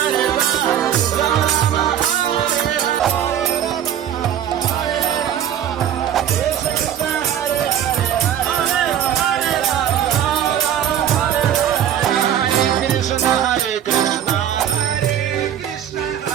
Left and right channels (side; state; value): left; quieter; 10.1 dB